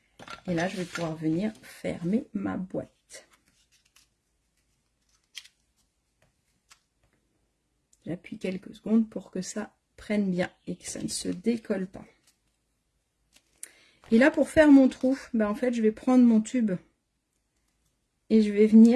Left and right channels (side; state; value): both; identical; correlation 1.00